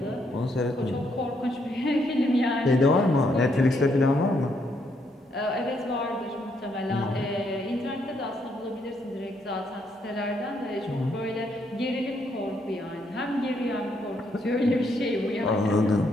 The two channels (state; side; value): normal; both; correlation 0.74